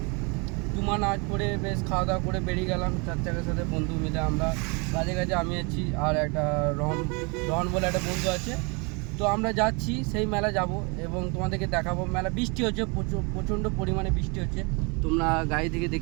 জুমা নামাজ পড়ে বেশ খাওয়া দাওয়া করে বেরিয়ে গেলাম 4 চাকার সাথে বন্ধু মিলে। আমরা কাজে কাজে আমি আছি আর একটা রহন রহন বলে একটা বন্ধু আছে। তো আমরা যাচ্ছি সেই মেলা যাব এবং তোমাদেরকে দেখাবো। মেলা বৃষ্টি হচ্ছে, প্রচণ্ড পরিমাণে বৃষ্টি হচ্ছে, তোমরা গাড়ি থেকে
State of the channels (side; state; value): left; quieter; 31.0 dB